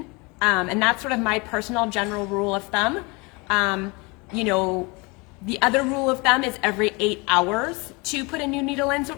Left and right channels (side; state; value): right; quieter; 27.6 dB